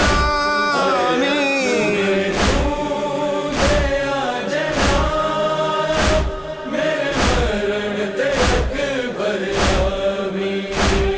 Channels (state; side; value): identical; both; correlation 1.00